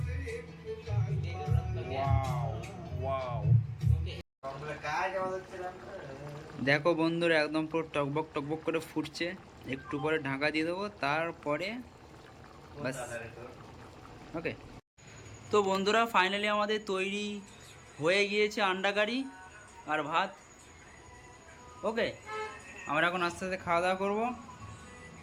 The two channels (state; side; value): identical; both; correlation 1.00